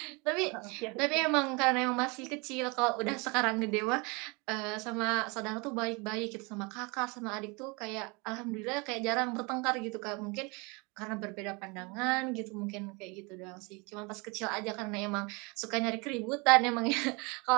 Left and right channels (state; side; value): quieter; left; 28.7 dB